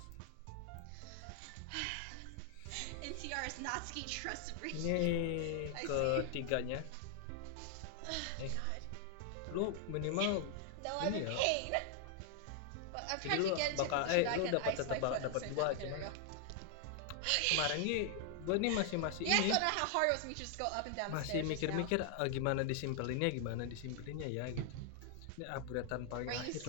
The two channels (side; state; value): both; different; correlation 0.00